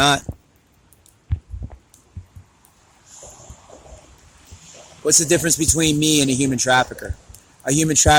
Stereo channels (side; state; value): both; identical; correlation 1.00